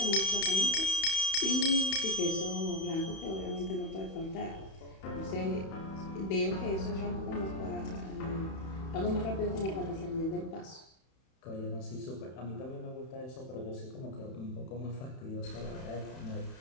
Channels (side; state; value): right; late; 31 ms